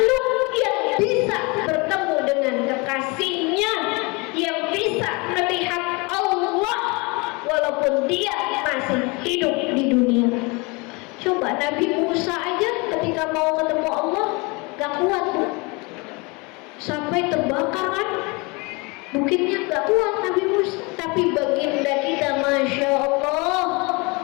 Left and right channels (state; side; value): quieter; right; 27.8 dB